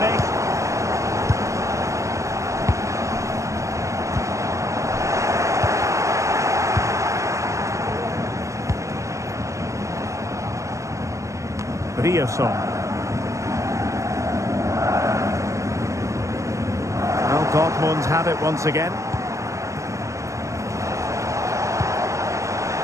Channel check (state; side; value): late; left; 0.15 ms